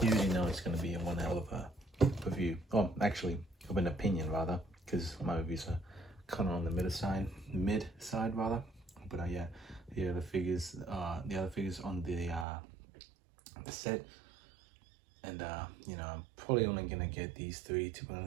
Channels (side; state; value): left; drops out; at 12.5 s